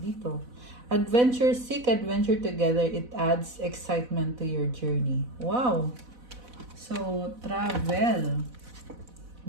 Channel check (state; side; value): late; left; 4.0 ms